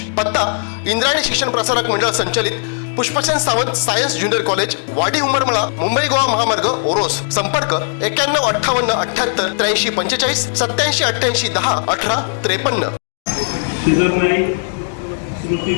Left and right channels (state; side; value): silent; right; digital silence